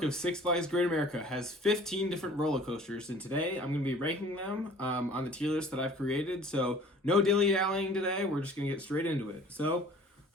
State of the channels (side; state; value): both; normal; correlation 0.49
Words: of Six Flags Great America has 15 different roller coasters, and today I'm going to be ranking them on the tier list that I've created. So, no dilly-dallying today. We're just going to get straight into it. So,